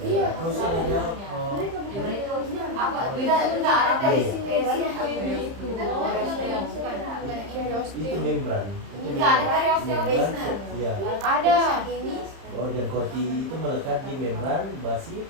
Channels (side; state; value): left; late; 30 ms